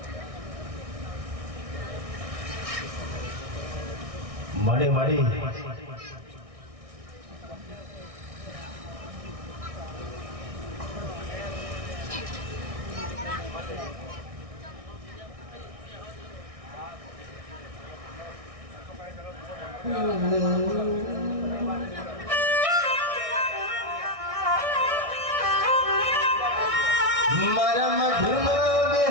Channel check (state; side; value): late; left; 1.6 ms